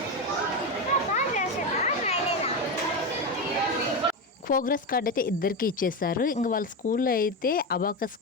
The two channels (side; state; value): both; normal; correlation 0.15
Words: ప్రోగ్రెస్ కార్డ్ అయితే ఇద్దరికి ఇచ్చేస్తారు. ఇంక వాళ్ళ స్కూల్లో అయితే అబాకస్